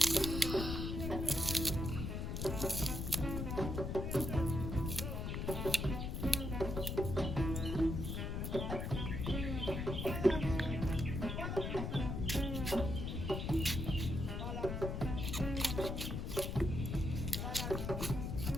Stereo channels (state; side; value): noise; left; rumble, 3 dB below the sound